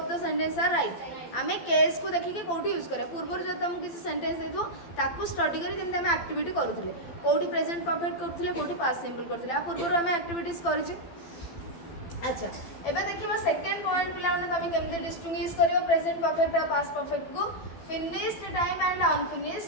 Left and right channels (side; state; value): right; late; 12 ms